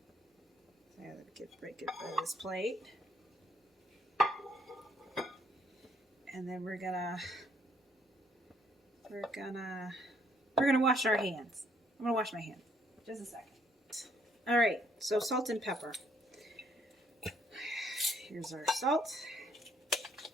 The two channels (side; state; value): both; normal; correlation 0.68